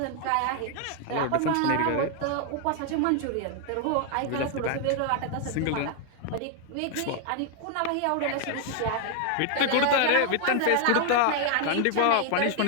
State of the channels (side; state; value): both; different; correlation 0.00